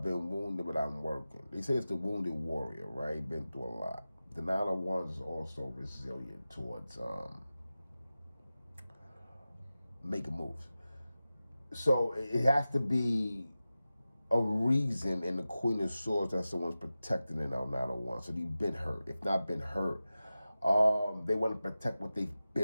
been wounded, but I'm working. They say it's the wounded warrior, right? Been through a lot. The Nine of Wands is also resilient towards making moves. So it has to be a reason in the Queen of Swords that someone's protecting in our Nine of Wands. So you've been hurt. If not been hurt, they want to protect what they've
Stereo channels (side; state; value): both; inverted; correlation -0.94